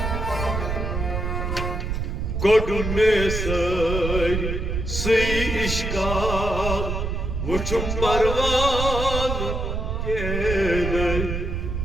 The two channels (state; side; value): noise; right; rumble, 2 dB below the sound